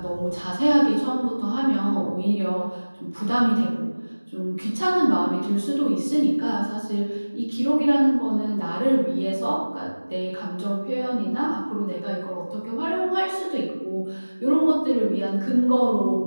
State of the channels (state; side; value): inverted; both; correlation -1.00